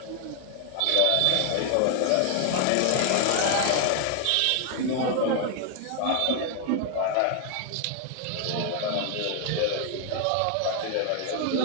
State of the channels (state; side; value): different; both; correlation 0.01